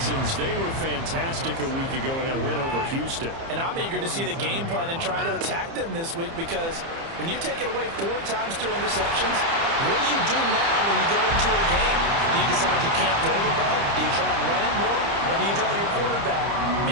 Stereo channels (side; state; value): left; late; 30 ms